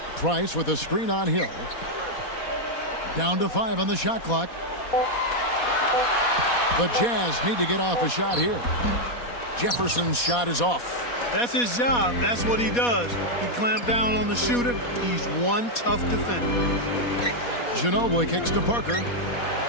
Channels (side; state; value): right; late; 4.2 ms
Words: Price with a screen on Hill. Down to 5 on the shot clock. The Jazz need to get off a shot here. Jefferson's shot is off. That's his job. That's what he does. He clamped down on the shooter. He's one tough defender. Ginobili kicks to Parker.